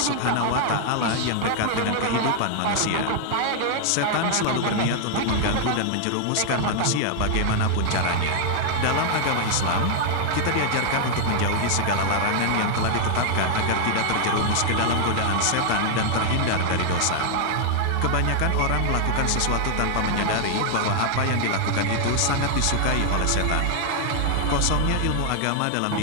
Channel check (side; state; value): both; different; correlation 0.00